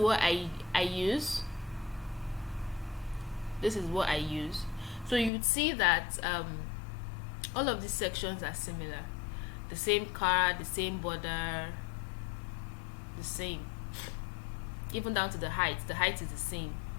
I use. This is what I use. So you'd see that All of these sections are similar. The same card, the same border, the same. Even down to the height. The height is the same.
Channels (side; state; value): right; drops out; at 5.3 s